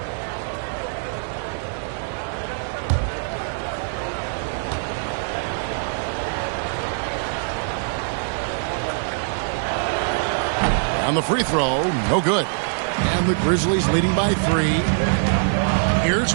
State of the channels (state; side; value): silent; left; 63 dB below the other